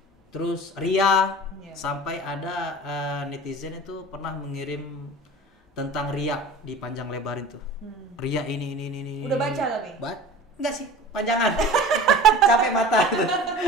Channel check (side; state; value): both; normal; correlation 0.39